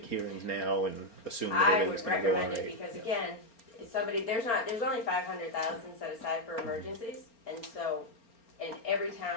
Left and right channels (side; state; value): right; late; 4.4 ms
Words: hearings now and assume that I everything's would gonna go on recommend it right? because again, if somebody, there's only 500,000 set aside for emergencies. And so, and every